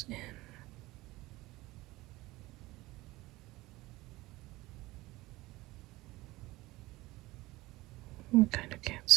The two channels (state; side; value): quieter; left; 19.6 dB